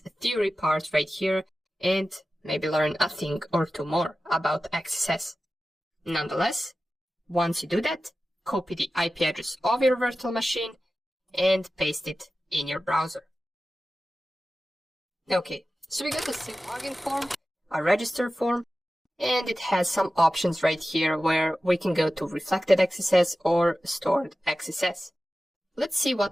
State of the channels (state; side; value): normal; both; correlation 0.95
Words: theory part right here and maybe learn a thing or two more about XSS. Nonetheless, once you do that, copy the IP address of your virtual machine and paste it in your browser. Okay, so we got a simple login form, a register form, and it has some options right here where we can go to reflected XSS or stored XSS. Let's see